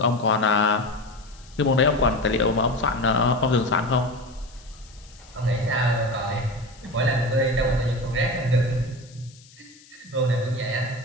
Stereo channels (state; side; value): noise; left; hiss, 25 dB below the sound